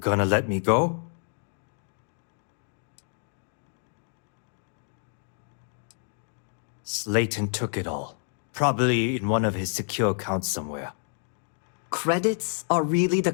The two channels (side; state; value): right; silent; 59 dB below the other